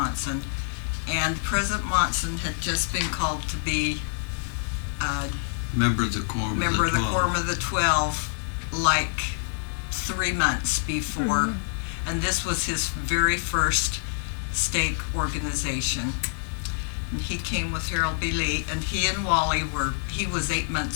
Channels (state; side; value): silent; right; digital silence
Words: And President Monson had just been called to be Member of the Quorum member of the 12. Quorum of the 12 like 3 months before. And this was his very first stake organization. And he came with Harold B. Lee, and he and Wally he was 8